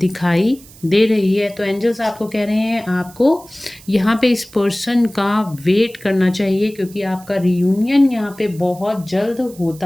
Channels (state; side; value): noise; right; hiss, 22 dB below the sound